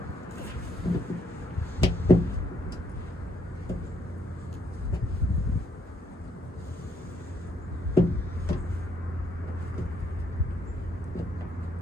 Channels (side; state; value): both; normal; correlation 0.72